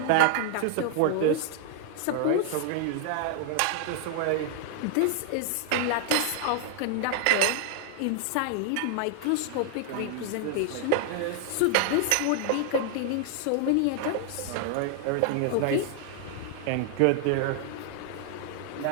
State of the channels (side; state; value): both; different; correlation 0.00